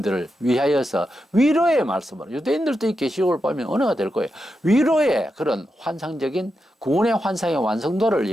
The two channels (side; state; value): both; normal; correlation 0.87